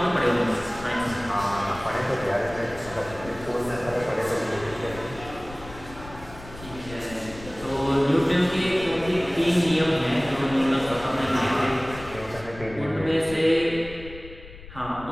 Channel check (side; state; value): left; noise; rumble, 16 dB below the sound